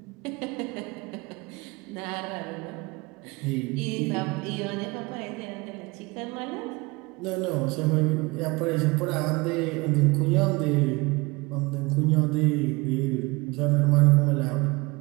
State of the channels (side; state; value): left; quieter; 24.5 dB